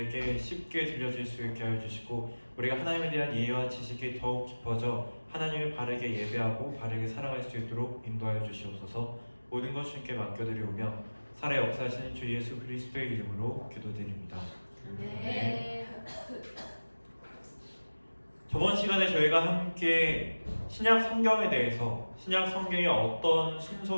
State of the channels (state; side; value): inverted; both; correlation -1.00